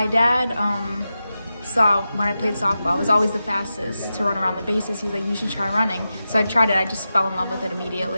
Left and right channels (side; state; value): both; inverted; correlation -0.91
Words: dad saw when I played softball, I was always the fastest to run around the bases. He was like, you should try running. So I tried it. I just fell in love with it